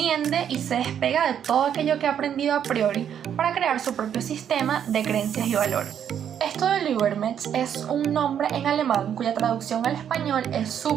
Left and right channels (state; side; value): quieter; left; 9.0 dB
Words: y se despega de todo aquello que ha aprendido a priori para crear su propio sistema de creencias y valores. Esto del Übermensch es un nombre en alemán cuya traducción al español es